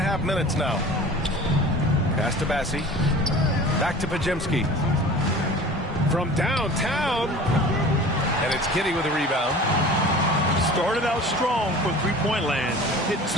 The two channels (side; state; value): both; normal; correlation 0.40